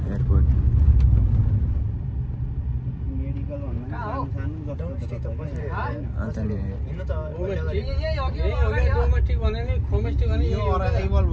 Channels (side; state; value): both; identical; correlation 1.00